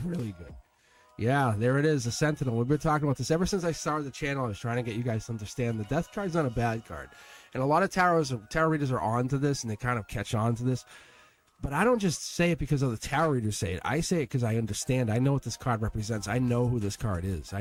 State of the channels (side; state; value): both; identical; correlation 1.00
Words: Really good. Yeah, there it is, the Sentinel. We've been talking about this ever since I started the channel. I was trying to get you guys to understand the Death card's not a bad card. And a lot of tarot readers are on to this, and they kind of catch on to this. But I don't just say it because of the tarot readers say it. I say it because I understand. I know what this card represents. I know who this card is.